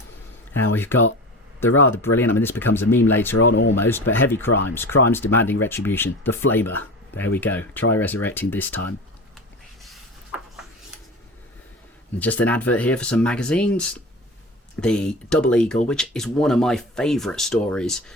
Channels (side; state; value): both; normal; correlation 0.32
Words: Now we've got the rather brilliant, I mean this becomes a meme later on almost, but heavy crimes. Crimes demanding retribution. The Flamer. There we go. Try resurrecting this time. And just an advert here for some magazines. The Double Eagle, which is one of my favourite stories